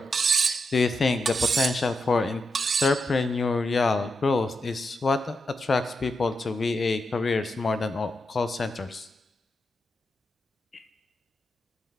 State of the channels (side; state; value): both; normal; correlation 0.85